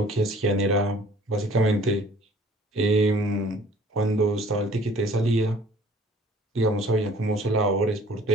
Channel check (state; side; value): normal; both; correlation 0.53